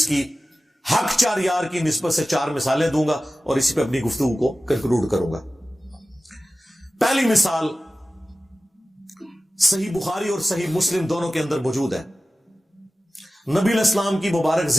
کی حق چار یار کی نسبت سے 4 مثالیں دوں گا اور اسی پہ اپنی گفتگو کو کنکلوڈ کروں گا. پہلی مثال صحیح بخاری اور صحیح مسلم دونوں کے اندر موجود ہے. نبی علیہ السلام کی مبارک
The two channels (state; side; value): normal; both; correlation 0.95